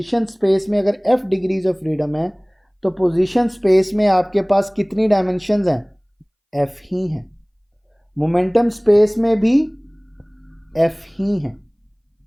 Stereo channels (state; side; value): identical; both; correlation 1.00